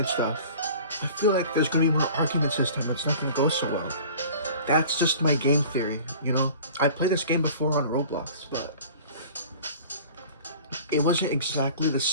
stuff, I feel like there's gonna be more arguments this time. It's not gonna go so well. That's just my game theory, you know? I played this game before on Roblox, but it wasn't exactly the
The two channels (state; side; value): inverted; both; correlation -0.44